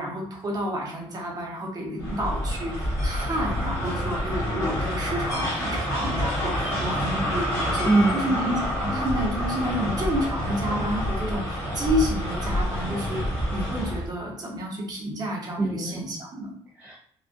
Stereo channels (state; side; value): normal; both; correlation 0.62